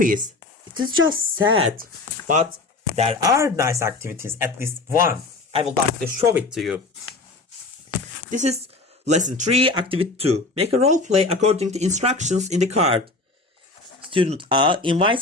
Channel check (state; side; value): quieter; right; 3.4 dB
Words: It is just sad. But there are nice activities, at least one. I would like to show it to you. This is lesson 3, activity 2. Make a role play according to instructions in the card. Student A